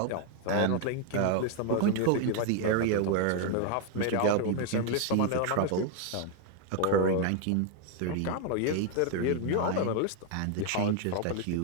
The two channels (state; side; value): different; both; correlation 0.01